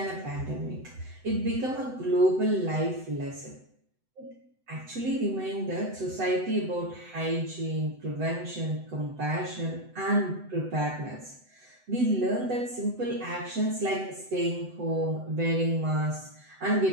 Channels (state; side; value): late; left; 7.9 ms